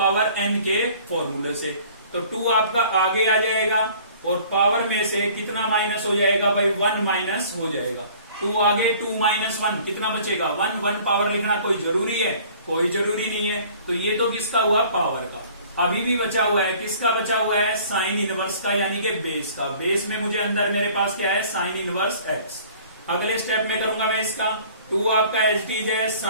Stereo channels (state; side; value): inverted; both; correlation -0.51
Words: n के फॉर्मूले से। तो 2 आपका आगे आ जाएगा और पावर में से कितना माइनस हो जाएगा भाई, 1 माइनस हो जाएगा। 2 आगे 2 माइनस 1 कितना बचेगा, 1। 1 पावर लिखना कोई जरूरी है, कोई जरूरी नहीं है। तो ये तो किसका हुआ, पावर का। अभी भी बचा हुआ है, किसका बचा हुआ है, साइन इनवर्स का, यानी कि बेस का। बेस में मुझे अंदर मेरे पास क्या है, साइन इनवर्स x। अगले स्टेप में करूंगा मैं इसका 2 आपका एच डीज है